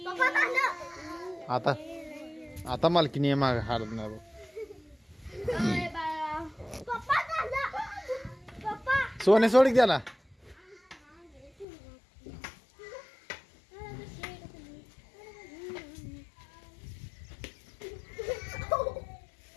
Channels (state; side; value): drops out; right; at 11.7 s